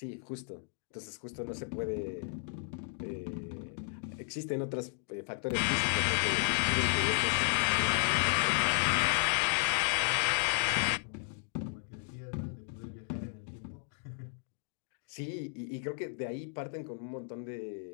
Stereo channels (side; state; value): right; silent; 55 dB below the other